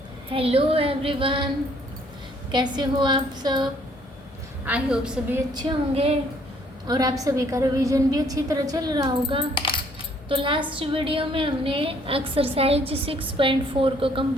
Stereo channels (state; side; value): normal; both; correlation 0.63